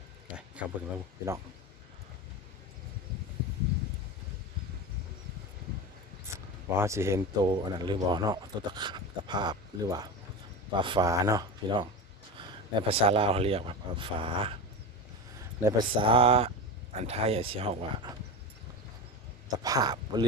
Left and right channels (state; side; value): normal; both; correlation 0.24